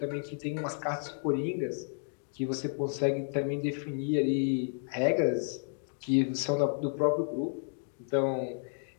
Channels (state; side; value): silent; right; digital silence